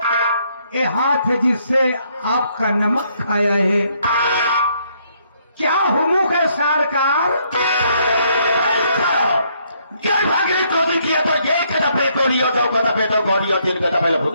ए हाथ जिससे आपका नमक खाया है। क्या हुमुक है सरकार को किया तो एक दफे तो लियो, दो दफे तो गौरियो, तीन दफे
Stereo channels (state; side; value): inverted; both; correlation -0.70